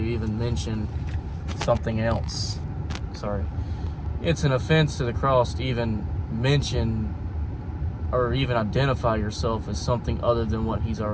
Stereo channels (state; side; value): identical; both; correlation 1.00